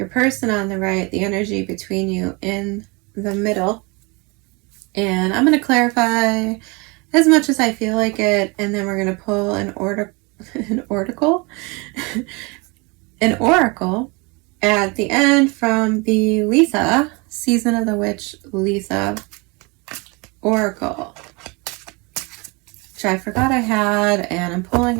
person on the right, the energy between you in the middle. And I'm going to clarify as much as I feel like it, and then we're going to pull an oracle at the end from the Lisa, Season of the Witch Lisa Oracle, which I forgot I had, and I'm pulling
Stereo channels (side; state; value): left; quieter; 28.2 dB